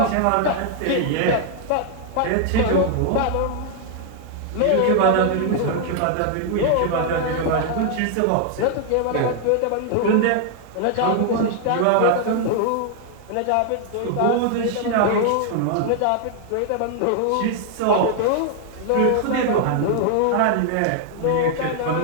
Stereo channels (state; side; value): different; both; correlation 0.00